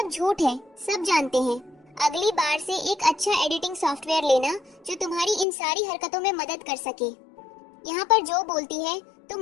झूठ है, सब जानते हैं। अगली बार से एक अच्छा एडिटिंग सॉफ्टवेयर लेना जो तुम्हारी इन सारी हरकतों में मदद कर सके। यहाँ पर जो बोलती है,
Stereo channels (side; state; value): right; drops out; at 5.5 s